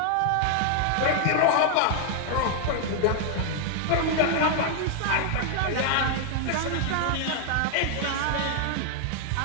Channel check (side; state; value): both; different; correlation 0.00